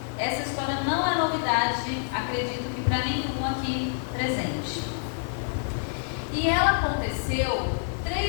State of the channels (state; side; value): silent; right; digital silence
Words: Essa história não é novidade, acredito que para nenhum aqui presente. E ela aconteceu